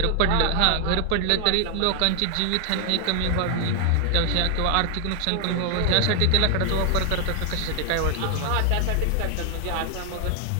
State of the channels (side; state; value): both; different; correlation 0.00